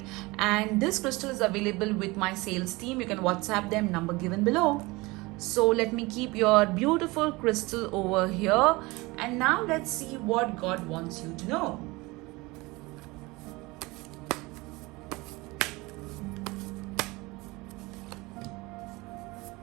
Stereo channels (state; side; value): quieter; left; 23.0 dB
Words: and this crystal is available with my sales team. You can WhatsApp them, number given below. So let me keep your beautiful crystal over here, and now let's see what God wants you to know.